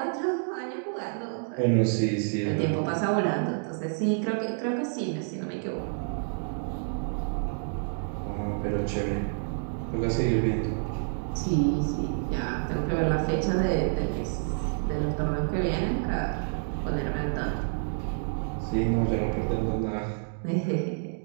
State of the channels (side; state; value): left; silent; digital silence